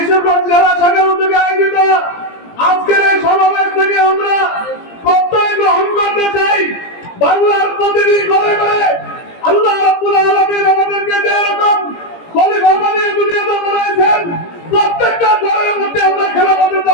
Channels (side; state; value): right; late; 17 ms